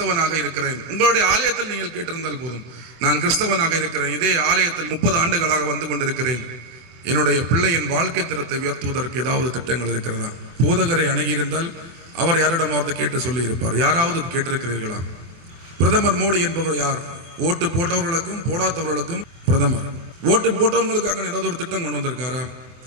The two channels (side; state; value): left; late; 24 ms